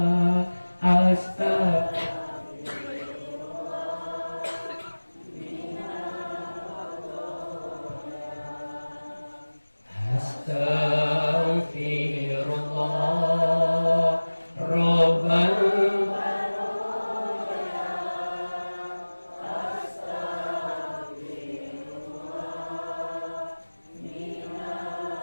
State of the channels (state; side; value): inverted; both; correlation -1.00